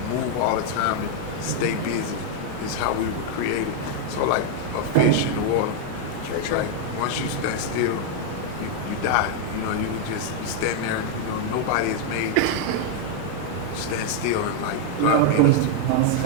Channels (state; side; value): different; both; correlation 0.00